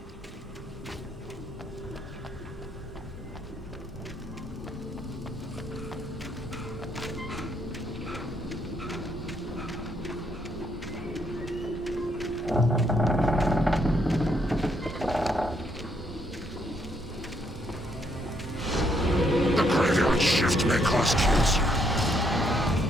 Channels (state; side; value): normal; both; correlation 0.73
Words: The graveyard shift may cause cancer.